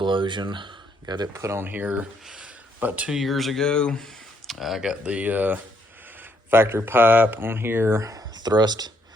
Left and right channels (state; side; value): normal; both; correlation 0.72